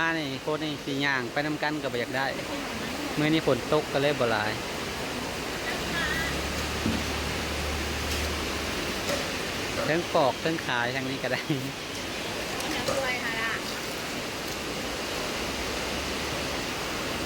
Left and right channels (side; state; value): both; identical; correlation 1.00